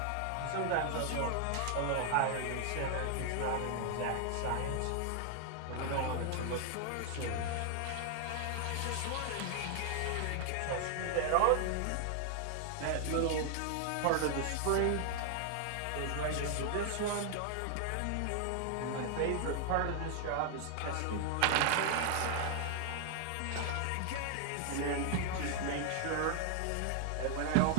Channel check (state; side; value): different; both; correlation 0.00